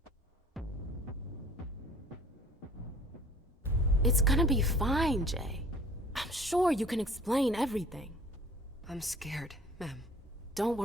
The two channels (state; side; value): normal; both; correlation 0.49